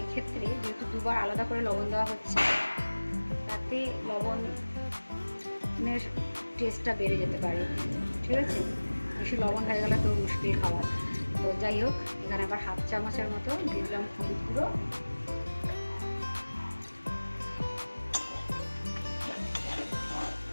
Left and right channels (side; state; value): both; inverted; correlation -1.00